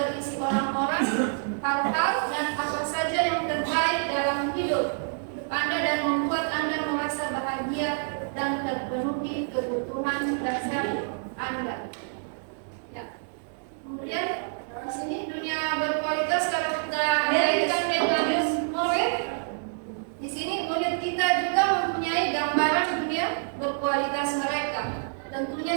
orang-orang, hal-hal dan apa saja yang terbaik dalam hidup Anda dan membuat Anda merasa bahagia dan terpenuhi kebutuhan dasar Anda. Ya. Kemudian di sini dunia berkualitas kalau kita kaitkan dengan murid, di sini murid kita juga mempunyai gambaran dunia berkualitas mereka. Tentunya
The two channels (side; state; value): left; silent; 60 dB below the other